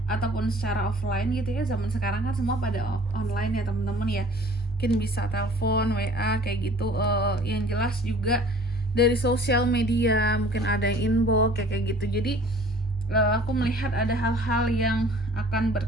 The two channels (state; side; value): normal; both; correlation 0.50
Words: ataupun secara offline gitu ya. Zaman sekarang kan semua pada online ya teman-teman ya. Mungkin bisa telepon, WA kayak gitu. Yang jelas juga dari sosial media, mungkin ada yang inbox kayak gitu. Jadi aku melihat ada hal-hal yang akan